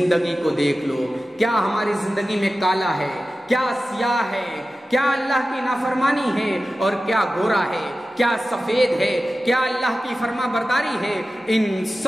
کو دیکھ لو۔ کیا ہماری زندگی میں کالا ہے؟ کیا سیاہ ہے؟ کیا اللہ کی نافرمانی ہے اور کیا گورا ہے؟ کیا سفید ہے؟ کیا اللہ کی فرما برداری ہے؟ ان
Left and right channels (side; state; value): both; normal; correlation 0.94